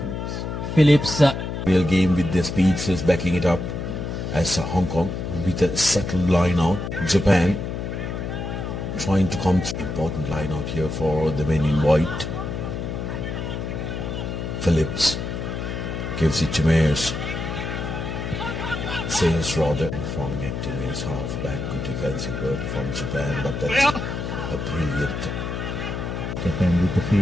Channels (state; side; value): noise; left; hum, 4 dB below the sound